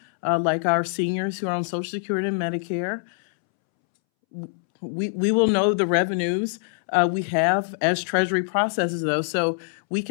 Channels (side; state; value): right; silent; 63 dB below the other